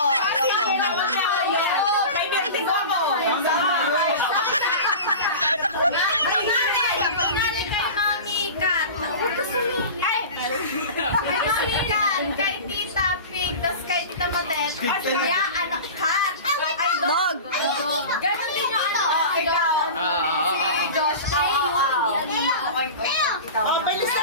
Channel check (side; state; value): both; inverted; correlation -0.33